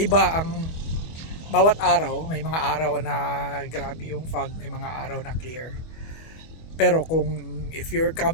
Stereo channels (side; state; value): right; late; 25 ms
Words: ang bawat araw. May mga araw na grabe yung fog, may mga araw na clear. Pero if you're